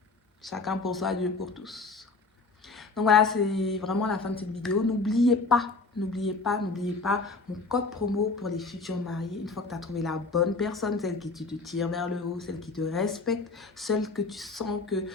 chacun pour soi, Dieu pour tous. Donc voilà, c'est vraiment la fin de cette vidéo. N'oubliez pas, mon code promo pour les futurs mariés. Une fois que tu as trouvé la bonne personne, celle qui te tire vers le haut, celle qui te respecte, celle que tu sens que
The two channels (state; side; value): quieter; right; 3.8 dB